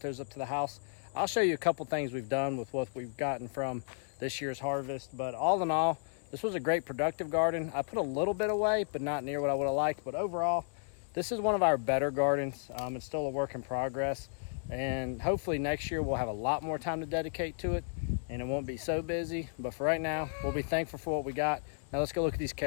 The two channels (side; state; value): right; silent; digital silence